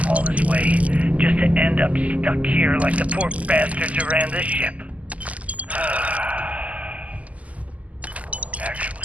all this way, just to end up stuck here like the poor bastards who ran this ship.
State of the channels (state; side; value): late; left; 0.071 ms